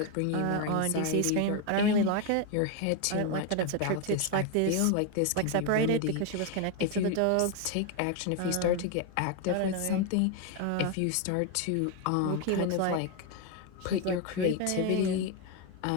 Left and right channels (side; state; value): both; different; correlation 0.01